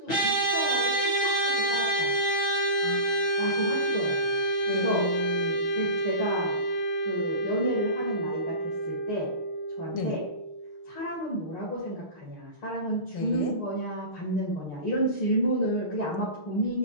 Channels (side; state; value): right; late; 6.4 ms